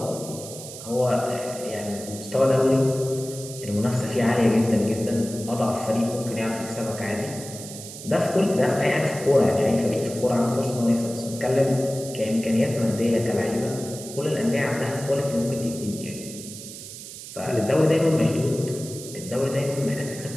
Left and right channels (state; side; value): noise; right; hiss, 12 dB below the sound